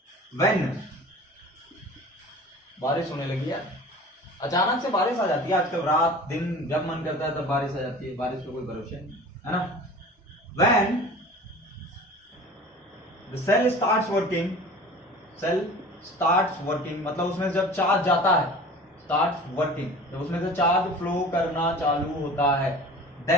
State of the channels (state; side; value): normal; both; correlation 0.41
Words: व्हेन, बारिश होने लगी यार, अचानक से बारिश आ जाती है आजकल, रात दिन जब मन करता है तब बारिश आ जाती है, बारिश का कोई भरोसा नहीं है ना। When the cell starts working, cell starts working मतलब उसमें जब चार्ज जाता है, स्टार्ट्स वर्किंग जब उसमें से चार्ज फ्लो करना चालू होता है,